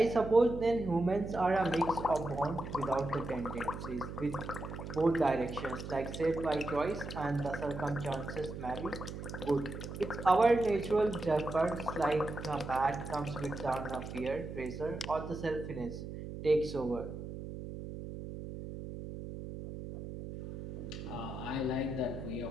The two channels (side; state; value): right; noise; hum, 8 dB below the sound